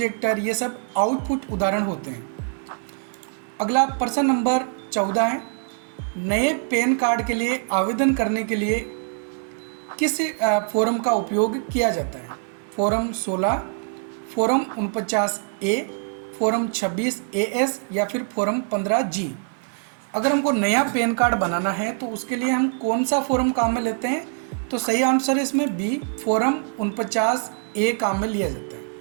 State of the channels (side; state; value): left; silent; 57 dB below the other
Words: ये सब आउटपुट उदाहरण होते हैं। अगला प्रश्न नंबर 14 है, नए पैन कार्ड के लिए आवेदन करने के लिए किस फॉर्म का उपयोग किया जाता है? Form 16, form 49A, form 26AS या फिर फॉर्म 15G? अगर हमको नया पैन कार्ड बनाना है तो उसके लिए हम कौन सा फॉर्म काम में लेते हैं? तो सही आंसर है इसमें बी, फॉर्म 49A काम में लिया जाता है।